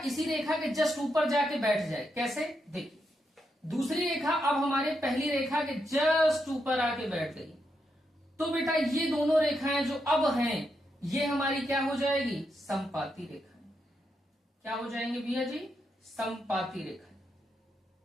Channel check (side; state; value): both; normal; correlation 0.82